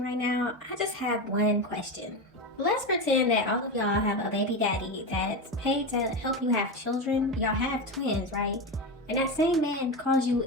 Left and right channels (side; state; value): both; normal; correlation 0.18